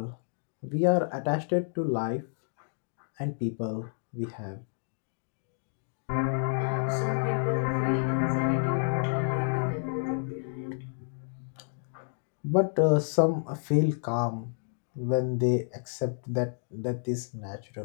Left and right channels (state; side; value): silent; right; digital silence